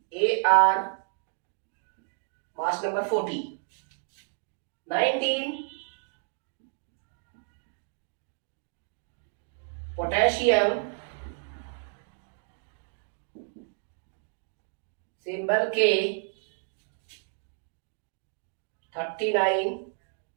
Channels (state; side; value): silent; left; 57 dB below the other